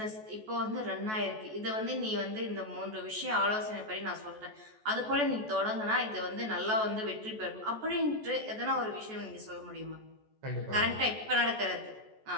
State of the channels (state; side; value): late; left; 14 ms